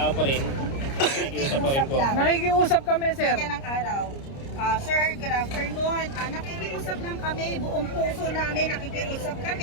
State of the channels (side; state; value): right; late; 30 ms